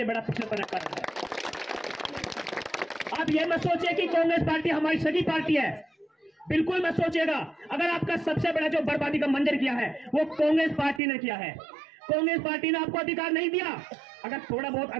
बड़ा पिछड़ेपन का कारण है। आप यह मत सोचिए कि कांग्रेस पार्टी हमारी सगी पार्टी है, बिल्कुल मत सोचिएगा। अगर आपका सबसे बड़ा जो बर्बादी का मंजर किया है वो कांग्रेस पार्टी ने किया है। कांग्रेस पार्टी ने आपको अधिकार नहीं दिया। अगर थोड़ा बहुत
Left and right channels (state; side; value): drops out; left; at 11.0 s